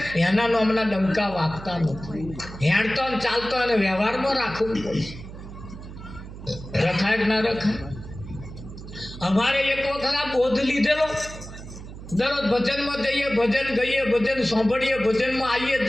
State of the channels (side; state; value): right; noise; hum, 13 dB below the sound